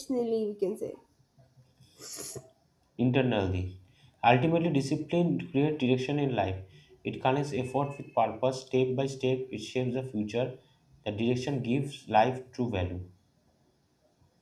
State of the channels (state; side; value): identical; both; correlation 1.00